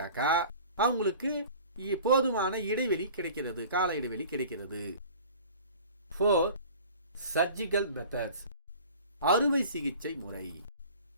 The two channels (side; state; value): both; inverted; correlation -0.43